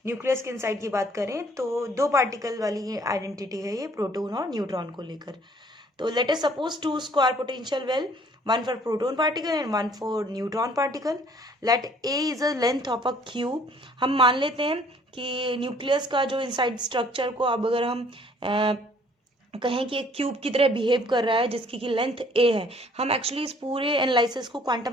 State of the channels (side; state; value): both; normal; correlation 0.58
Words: न्यूक्लियस के इनसाइड की बात करें तो दो पार्टिकल वाली आइडेंटिटी है ये, प्रोटॉन और न्यूट्रॉन को लेकर। तो let us suppose 2 square potential well, 1 for proton particle and 1 for neutron particle. Let A is a length of a cube. हम मान लेते हैं कि न्यूक्लियस का जो इनसाइड स्ट्रक्चर को अब अगर हम कहें कि एक क्यूब की तरह बिहेव कर रहा है जिसकी की लेंथ ए है। हम एक्चुअली इस पूरे एनालिसिस को